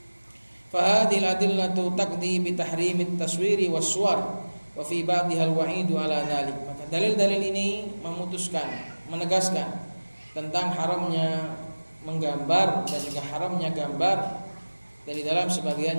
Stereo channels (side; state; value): both; inverted; correlation -1.00